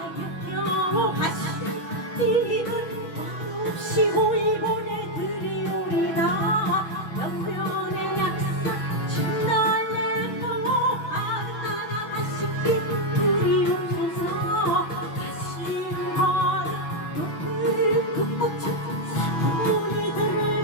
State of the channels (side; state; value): right; late; 6.1 ms